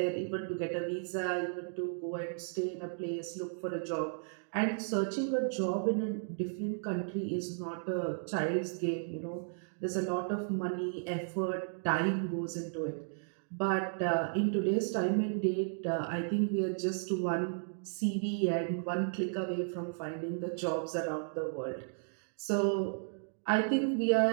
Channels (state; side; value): silent; left; digital silence